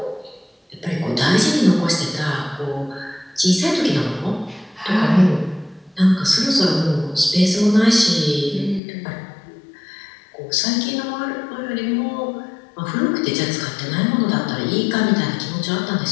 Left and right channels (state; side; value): drops out; right; at 8.8 s